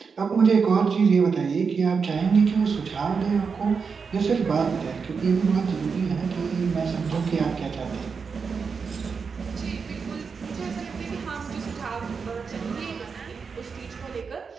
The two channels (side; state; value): left; quieter; 5.5 dB